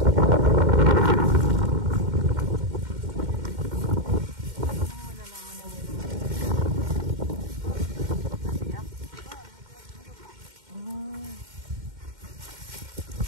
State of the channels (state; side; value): late; left; 2.1 ms